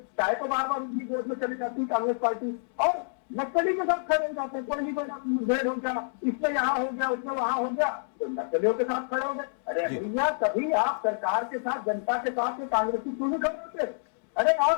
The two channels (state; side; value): silent; right; digital silence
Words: चाहे तो बार बार उनकी गोद में चली जाती कांग्रेस पार्टी और नक्सली के साथ खड़े हो जाते हैं। कोई मुठभेड़ हो गया, इसमें यहाँ हो गया, उसमें वहां हो गया, तो नक्सलियों के साथ खड़े हो गए। अरे भैया, कभी आप सरकार के साथ, जनता के साथ कांग्रेसी क्यों नहीं खड़े होते? अरे